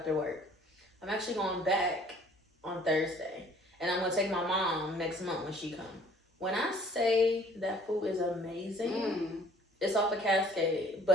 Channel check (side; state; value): both; normal; correlation 0.55